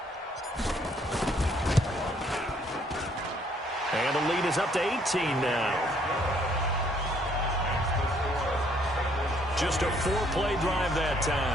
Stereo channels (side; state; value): both; normal; correlation 0.66